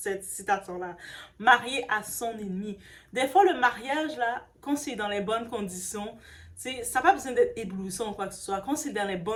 citation-là. Marié à son ennemi. Des fois, le mariage, là, quand c'est dans les bonnes conditions, ça n'a pas besoin d'être éblouissant ou quoi que ce soit. Quand c'est dans les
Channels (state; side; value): identical; both; correlation 1.00